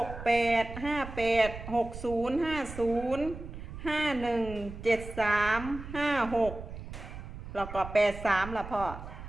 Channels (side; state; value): right; noise; rumble, 11 dB below the sound